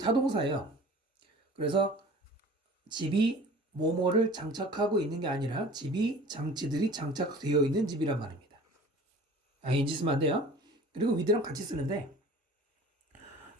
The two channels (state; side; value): normal; both; correlation 0.45